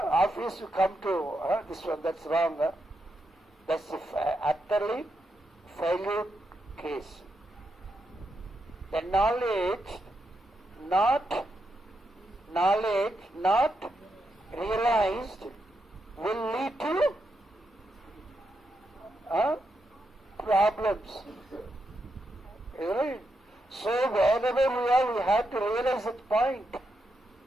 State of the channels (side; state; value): both; normal; correlation 0.83